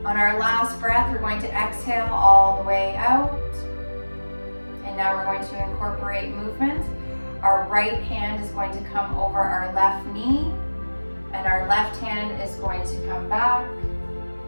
On our last breath, we're going to exhale all the way out. And now we're going to incorporate movement. Our right hand is going to come over our left knee, and our left hand is going to come back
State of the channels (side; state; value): both; inverted; correlation -1.00